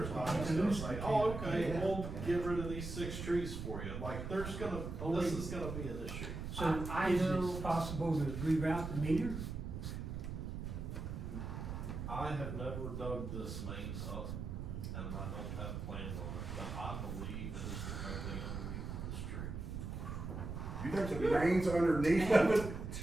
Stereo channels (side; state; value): right; noise; rumble, 5 dB below the sound